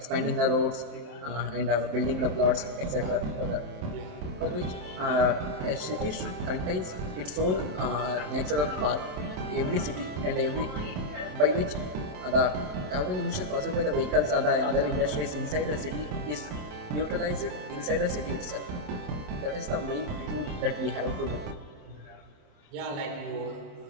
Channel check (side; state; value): left; late; 27 ms